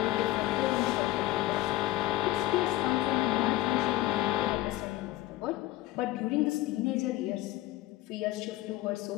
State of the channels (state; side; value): quieter; right; 16.6 dB